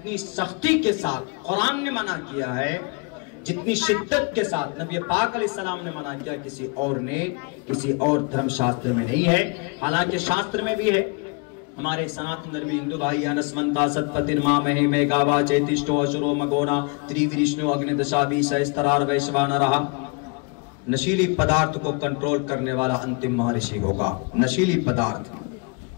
سختی کے ساتھ قرآن نے منع کیا ہے، جتنی شدت کے ساتھ نبی پاک علیہ السلام نے منع کیا، کسی اور دھرم شاستر میں نہیں ہے۔ حالانکہ شاستر میں بھی ہے۔ ہمارے سناتن دھرمی ہندو بھائی انسمنتا ستپتن مامہی میں گاوا چیتشٹو اشرو مگونا تریوریشنو اگنی دشابی سہسترار ویشوان رہا۔ نشیلی پدارت کو کنٹرول کرنے والا انتم مہارشی ہوگا۔ نشیلی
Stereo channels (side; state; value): right; quieter; 32.6 dB